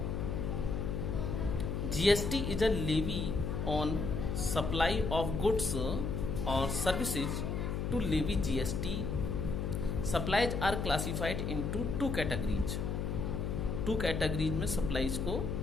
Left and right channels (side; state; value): left; noise; hum, 2 dB below the sound